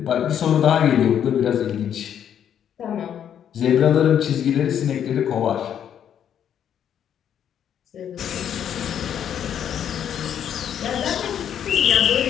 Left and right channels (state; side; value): quieter; right; 9.3 dB